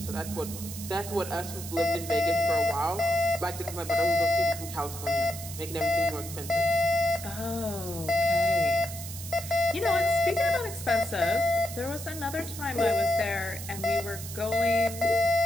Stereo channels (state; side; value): noise; right; hiss, 10 dB below the sound